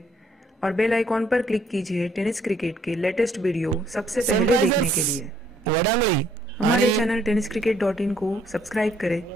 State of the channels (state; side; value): normal; both; correlation 0.66